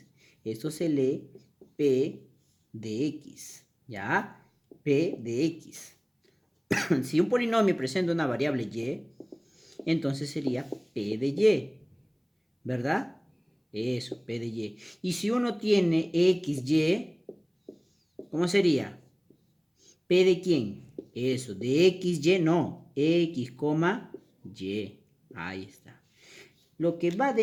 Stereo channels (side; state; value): both; identical; correlation 1.00